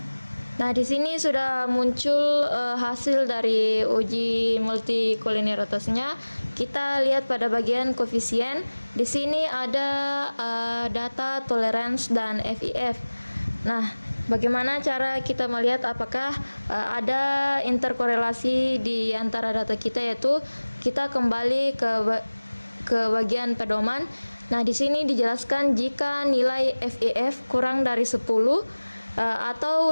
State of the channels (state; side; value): inverted; both; correlation -1.00